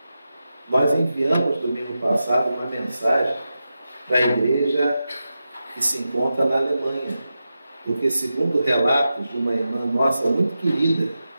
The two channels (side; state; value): both; inverted; correlation -0.91